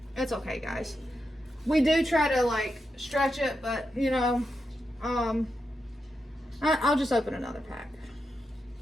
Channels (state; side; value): normal; both; correlation 0.87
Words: It's okay, guys. We do try to like stretch it, but you know, I'll just open another pack.